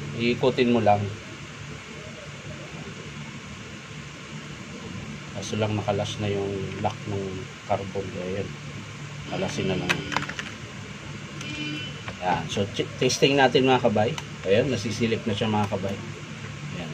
iikutin mo lang. Kaso lang nakalas na yung lock ng carbon. Ayan, kalasin na lang. Ayan. So testing natin mga kabay. Ayan, nasisilip na siya mga kabay. Ayan.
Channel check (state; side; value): identical; both; correlation 1.00